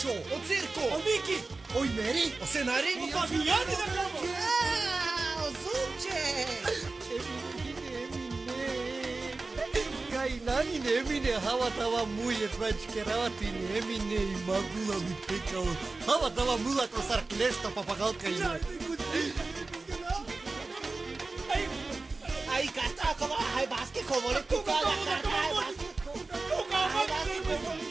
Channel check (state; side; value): quieter; left; 3.6 dB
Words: O circo! O Miki. Oi Meri. O scenari? O Fabiani da cama. O zupce. Nani nemine hava tava muye prachkeravati nemine magula mi pekao hava tava mula kosar klesta papagalka ina Ai karta akova hai baske kovole tu kala karta hai baske.